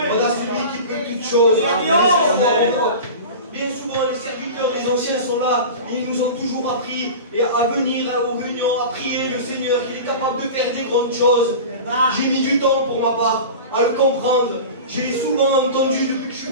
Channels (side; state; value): both; inverted; correlation -0.32